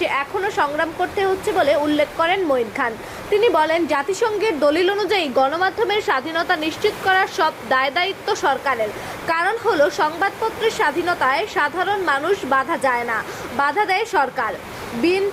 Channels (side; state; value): both; identical; correlation 1.00